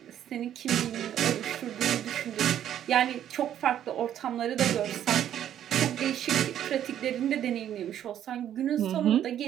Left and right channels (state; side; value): quieter; left; 10.7 dB